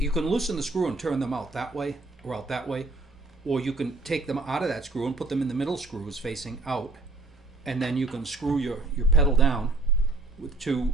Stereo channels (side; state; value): left; quieter; 3.2 dB